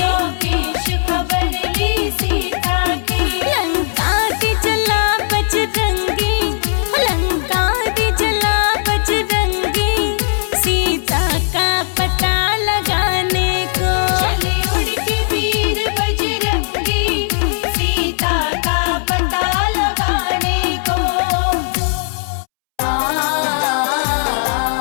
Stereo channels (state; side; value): silent; right; 68 dB below the other